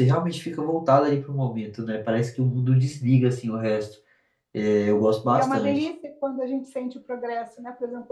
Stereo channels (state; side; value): identical; both; correlation 1.00